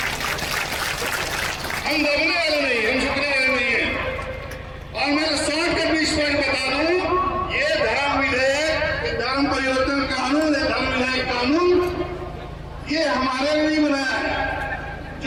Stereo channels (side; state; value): both; identical; correlation 1.00